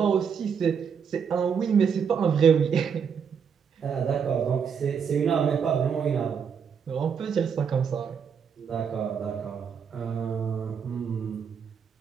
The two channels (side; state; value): left; quieter; 6.9 dB